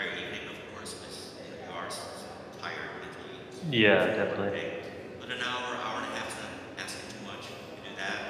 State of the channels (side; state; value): both; identical; correlation 1.00